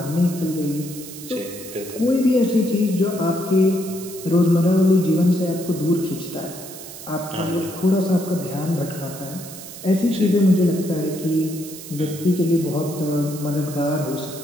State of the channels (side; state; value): right; noise; hiss, 13 dB below the sound